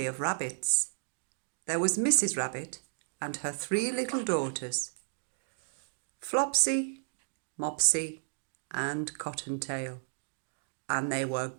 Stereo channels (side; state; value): left; silent; digital silence